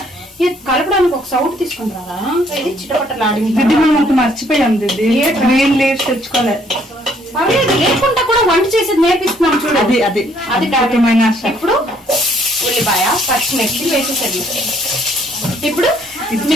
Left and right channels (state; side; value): normal; both; correlation 0.65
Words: ఇది కలపడానికి ఒక సౌట్ తీసుకుని రారా, ఇది చిటపట్టలాడింది. మనం మర్చిపోయాం దిద్ది, గ్రీన్ లీవ్స్ తెచ్చుకోలేదు. లేకుండా కూడా వంట చేసేది నేర్పిస్తున్నాం చూడు. అది ఇప్పుడు ఉల్లిపాయ పచ్చిమిర్చి వేసేసరి. ఇప్పుడు